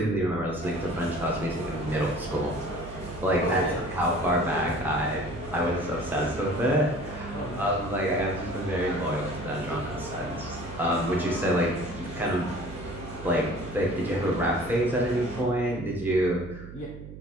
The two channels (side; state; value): right; noise; hum, 13 dB below the sound